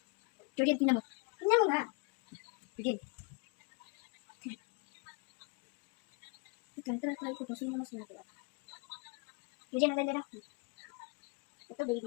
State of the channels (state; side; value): quieter; right; 32.7 dB